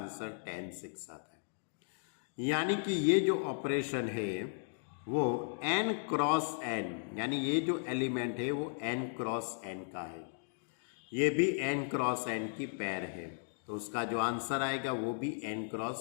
10, 6 आता है। यानी कि ये जो ऑपरेशन है वो n क्रॉस n, यानी ये जो एलिमेंट है वो n क्रॉस n का है, ये भी n क्रॉस n की पेयर है, तो उसका जो आंसर आएगा वो भी n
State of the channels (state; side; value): silent; right; digital silence